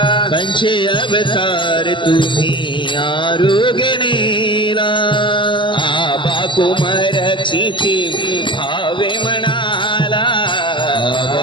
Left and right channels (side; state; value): right; late; 0.24 ms